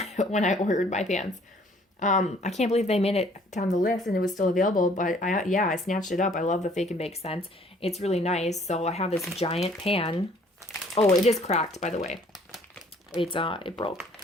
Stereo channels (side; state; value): both; normal; correlation 0.58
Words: when I ordered my pans. I can't believe they made it down the list and it was still available, but I snatched it up. I love the Fake and Bake scent. It's really nice. So I have this giant pan. Oh, it is cracked, by the way. It broke.